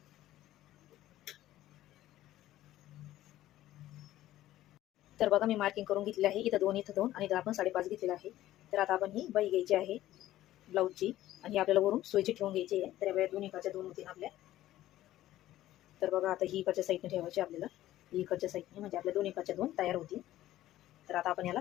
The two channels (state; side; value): quieter; right; 14.3 dB